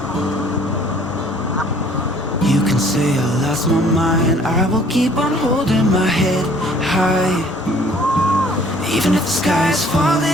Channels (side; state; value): both; normal; correlation 0.57